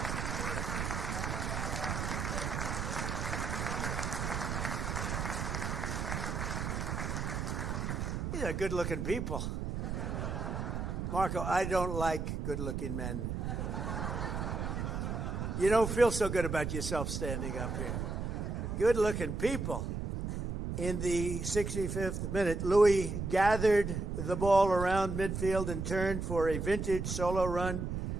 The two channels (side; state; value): right; noise; rumble, 3 dB below the sound